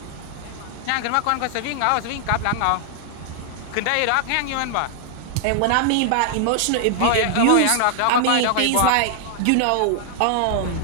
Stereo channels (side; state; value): both; different; correlation 0.00